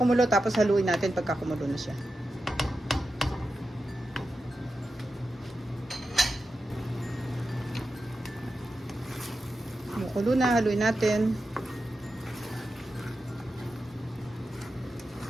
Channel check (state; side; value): normal; both; correlation 0.90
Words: tapos haluin natin pagka kumulo na siya. Kumukulo na, haluin natin.